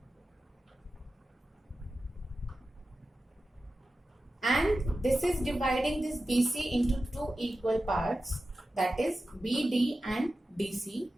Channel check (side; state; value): both; normal; correlation 0.93